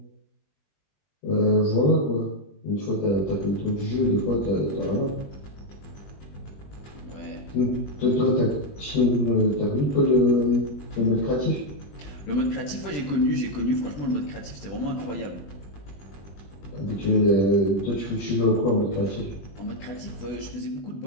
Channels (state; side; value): late; right; 21 ms